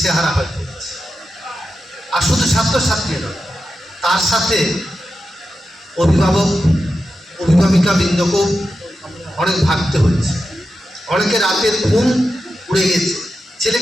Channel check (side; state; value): both; normal; correlation 0.90